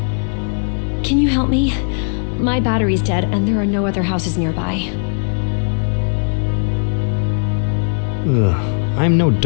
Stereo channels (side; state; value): right; silent; digital silence